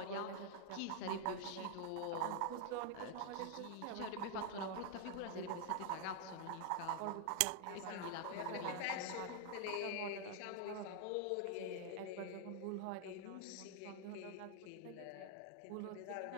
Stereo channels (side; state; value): both; different; correlation 0.00